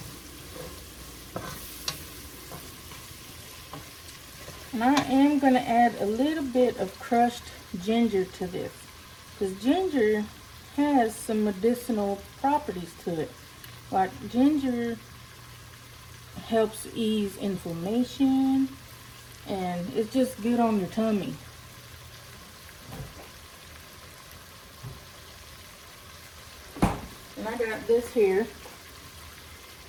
And I am going to add a little bit of crushed ginger to this, because ginger has some medicinal properties to it. Like ginger helps ease inflammation, and it's just good on your tummy. And I got this here,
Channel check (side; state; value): both; identical; correlation 1.00